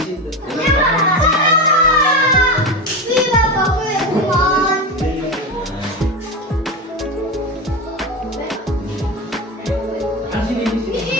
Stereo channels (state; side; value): normal; both; correlation 0.19